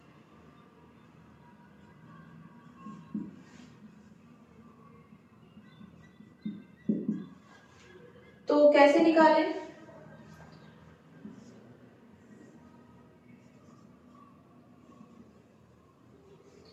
तो कैसे निकालें,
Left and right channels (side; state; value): both; identical; correlation 1.00